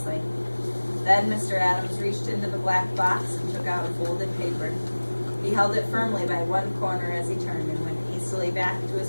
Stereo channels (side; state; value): both; inverted; correlation -1.00